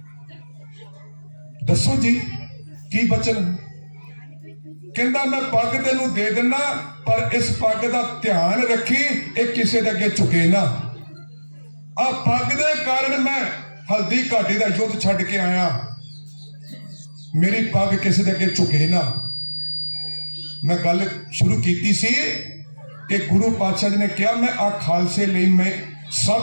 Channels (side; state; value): both; inverted; correlation -1.00